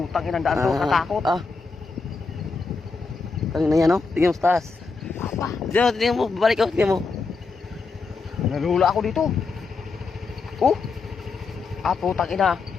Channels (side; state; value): right; quieter; 4.4 dB